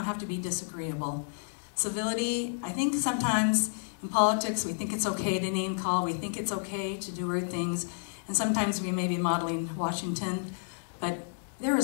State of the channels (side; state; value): right; silent; 57 dB below the other